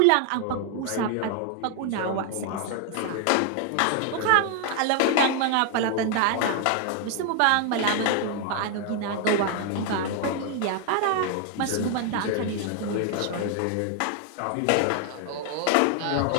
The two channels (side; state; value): both; different; correlation 0.00